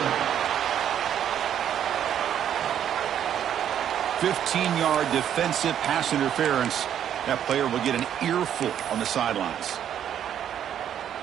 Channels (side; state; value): left; quieter; 9.8 dB